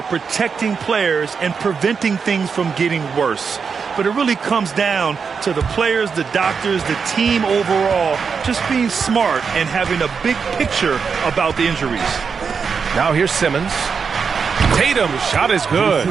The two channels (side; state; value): left; quieter; 5.8 dB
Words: protecting players and preventing things from getting worse. But it really comes down to the players, the doctors, the team overall, just being smart and having a big picture about the injuries. Now here's Simmons. Tatum, shot is good.